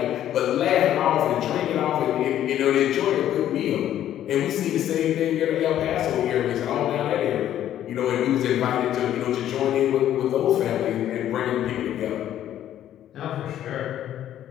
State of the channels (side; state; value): right; quieter; 11.6 dB